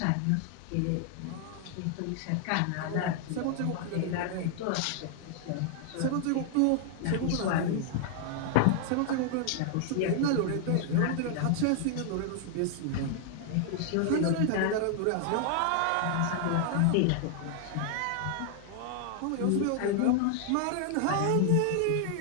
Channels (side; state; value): both; different; correlation 0.00